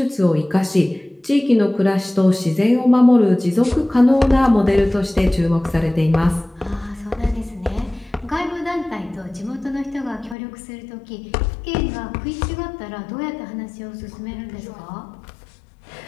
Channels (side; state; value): right; drops out; at 10.4 s